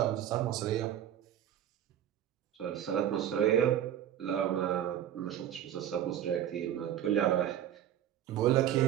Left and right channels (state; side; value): quieter; left; 10.8 dB